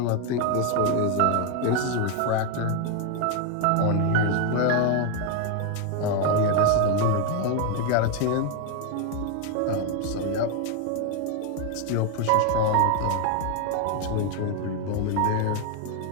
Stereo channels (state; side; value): different; both; correlation 0.01